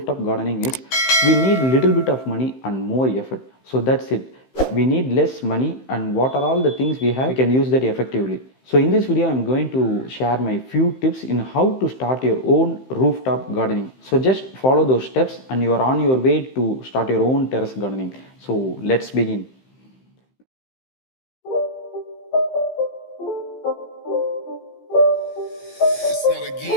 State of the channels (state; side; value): late; right; 15 ms